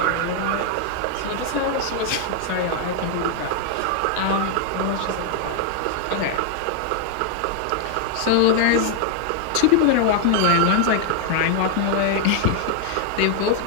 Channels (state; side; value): different; both; correlation 0.00